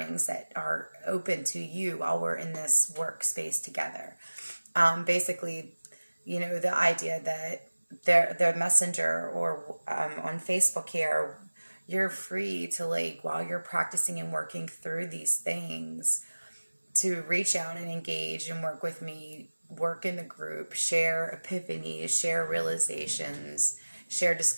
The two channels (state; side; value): inverted; both; correlation -1.00